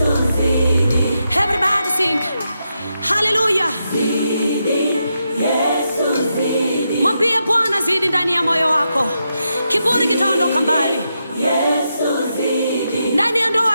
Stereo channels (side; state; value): both; inverted; correlation -0.85